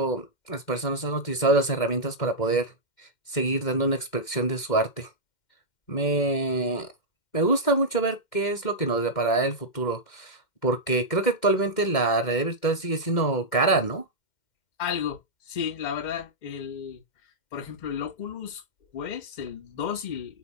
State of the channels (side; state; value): right; late; 2.1 ms